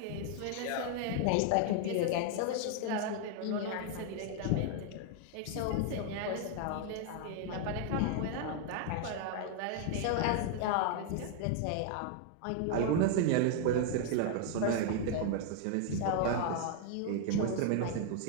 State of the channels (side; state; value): both; different; correlation 0.00